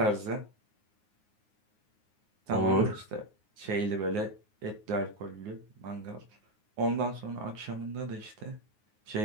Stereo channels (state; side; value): late; left; 9.5 ms